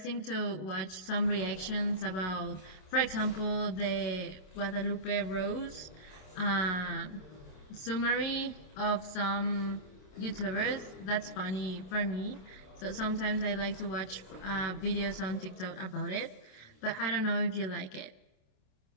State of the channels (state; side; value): late; right; 27 ms